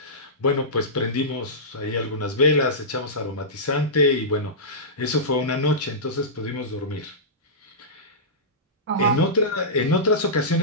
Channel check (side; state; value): both; normal; correlation -0.17